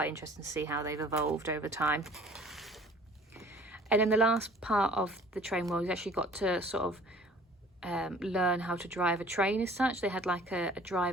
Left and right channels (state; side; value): normal; both; correlation 0.51